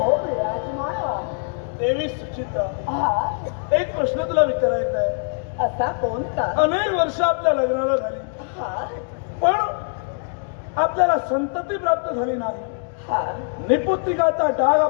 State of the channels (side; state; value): right; silent; 57 dB below the other